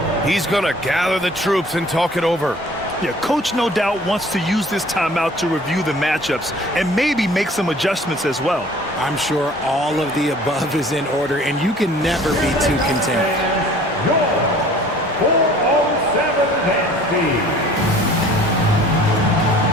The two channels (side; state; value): both; normal; correlation 0.50